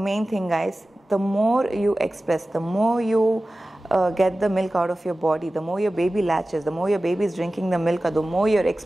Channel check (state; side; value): normal; both; correlation 0.96